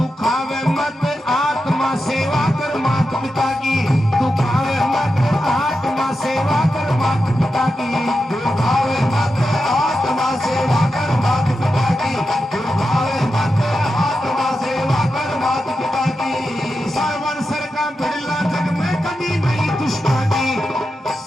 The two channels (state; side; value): normal; both; correlation 0.89